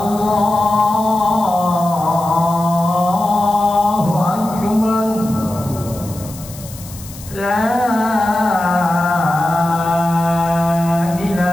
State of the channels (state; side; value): noise; left; hiss, 17 dB below the sound